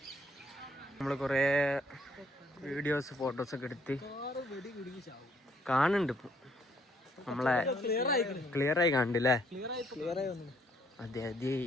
നമ്മൾ കുറേ വീഡിയോസ് ഫോട്ടോസൊക്കെ എടുത്ത് കാണുന്നുണ്ട്. ഇപ്പം നമ്മളെ ക്ലിയറായി കണ്ടില്ലേ? അതെ അതെ.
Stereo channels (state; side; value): normal; both; correlation 0.67